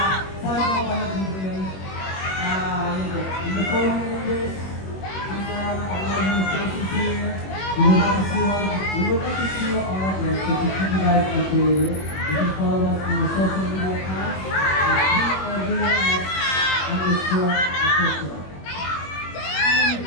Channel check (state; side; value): late; right; 21 ms